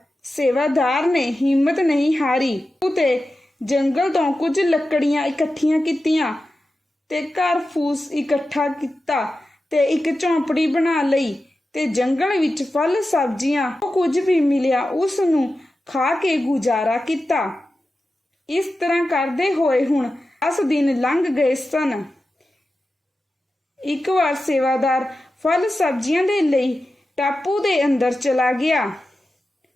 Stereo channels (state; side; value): normal; both; correlation 0.92